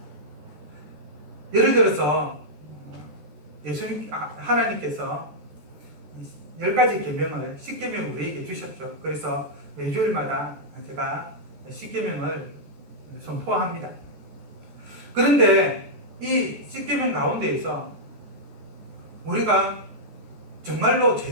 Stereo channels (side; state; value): left; late; 14 ms